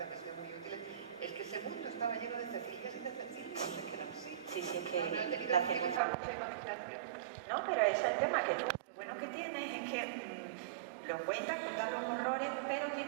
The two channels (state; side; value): drops out; left; at 6.0 s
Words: me han sido muy útiles, es que ese mundo estaba lleno de Cecilias y de Cecilias, es que eran así. Sí, es que no he tenido la que usar mucha imaginación. No, pero ese es el tema, que tú, lo bueno que tienes es que lo cuentas, contar los horrores, pero